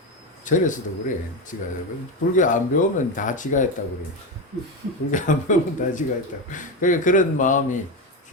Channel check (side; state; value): both; normal; correlation 0.15